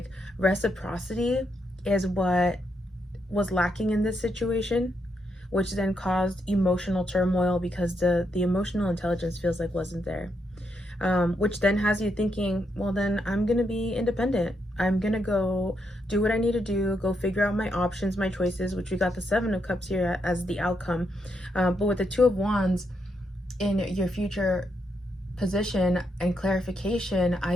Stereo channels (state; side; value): normal; both; correlation 0.80